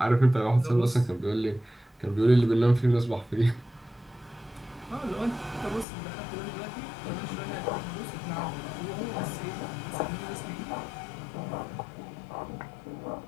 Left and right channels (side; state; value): right; drops out; at 5.9 s